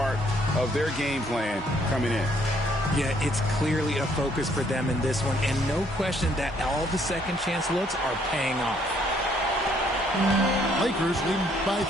of their game plan coming in. Yeah, it's clearly a focus for them in this one, and no question that all the second chance looks are paying off. Lakers lead by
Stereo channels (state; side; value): normal; both; correlation 0.66